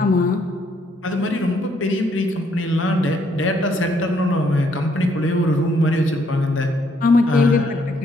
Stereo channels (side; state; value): both; normal; correlation 0.70